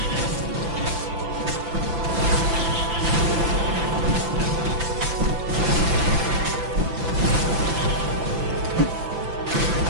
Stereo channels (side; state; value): left; late; 5.9 ms